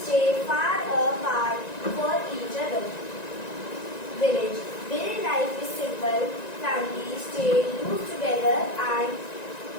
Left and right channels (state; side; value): late; right; 1.9 ms